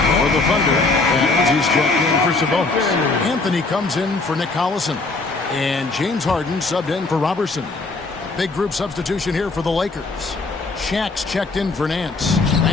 For the Thunder, as he's checked in for Sabonis. Anthony comes in for Nick Collison. And James Harden subbed in for Robertson. Big group substitution here for the Lakers. Shaq's checked in for Nance.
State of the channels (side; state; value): right; quieter; 3.7 dB